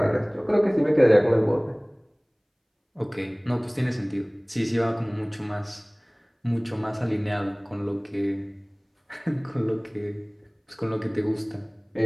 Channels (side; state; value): both; identical; correlation 1.00